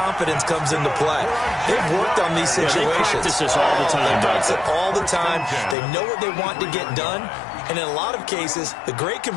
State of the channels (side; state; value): right; drops out; at 5.8 s